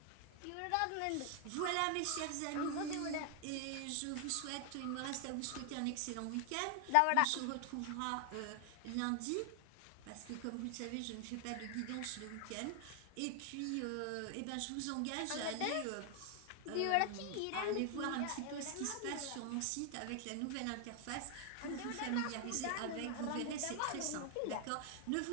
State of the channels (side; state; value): both; different; correlation 0.00